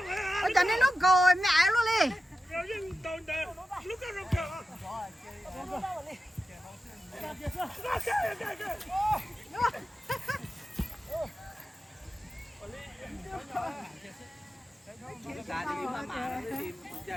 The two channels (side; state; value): both; normal; correlation 0.92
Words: ôi cho nên nó gọi mẹ luôn đi